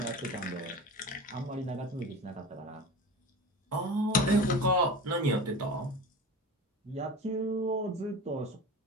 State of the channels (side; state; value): both; normal; correlation 0.32